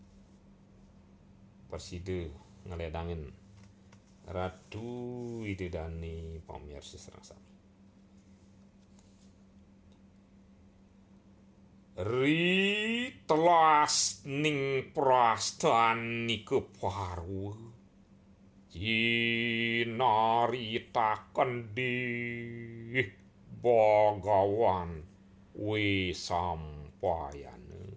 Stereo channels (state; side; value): identical; both; correlation 1.00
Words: perside ngaledangin Ratu Idedani pamirsa serang sami. Ri telas ning prastani keparwa jinaritaken di Bagawan we sampayana